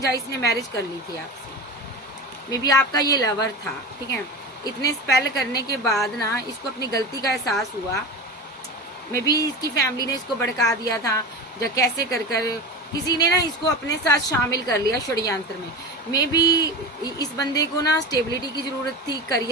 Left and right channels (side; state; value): both; normal; correlation 0.26